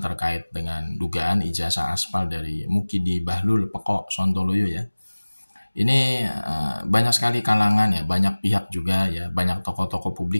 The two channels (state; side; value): inverted; both; correlation -1.00